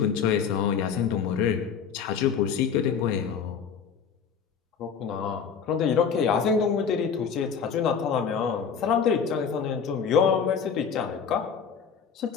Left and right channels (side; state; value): right; quieter; 6.7 dB